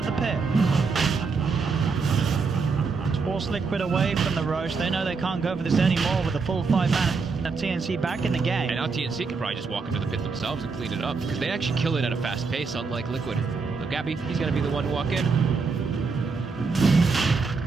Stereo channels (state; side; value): quieter; left; 4.7 dB